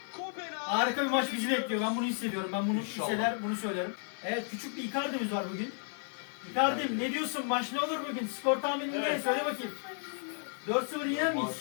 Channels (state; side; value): silent; right; 56 dB below the other